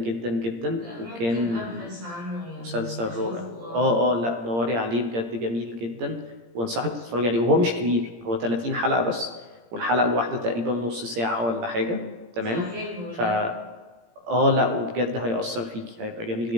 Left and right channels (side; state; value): left; late; 17 ms